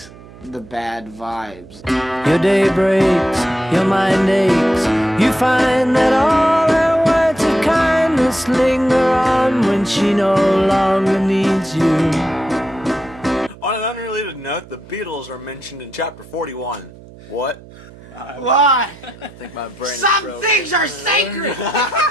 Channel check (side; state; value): right; noise; hum, 20 dB below the sound